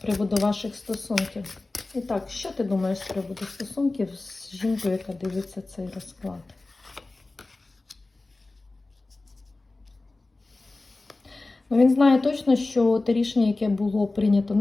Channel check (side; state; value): right; quieter; 3.2 dB